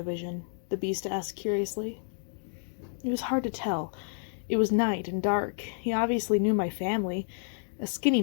vision?" the beast asked curiously. "It was hard to tell. It was night and dark. He obviously knew my family. A skinny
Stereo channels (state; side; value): silent; right; digital silence